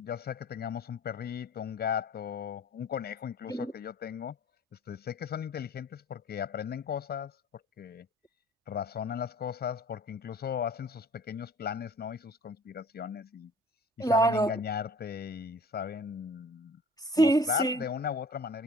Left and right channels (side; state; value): both; normal; correlation 0.48